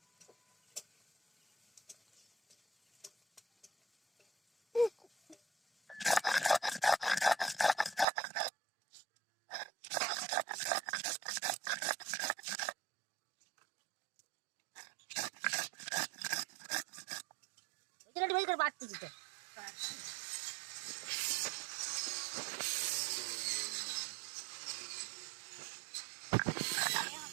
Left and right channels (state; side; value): drops out; left; at 8.1 s